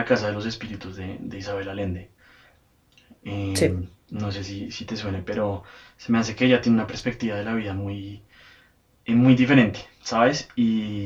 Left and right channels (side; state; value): both; identical; correlation 1.00